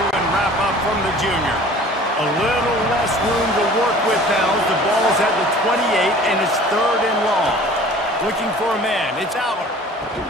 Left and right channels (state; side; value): normal; both; correlation 0.47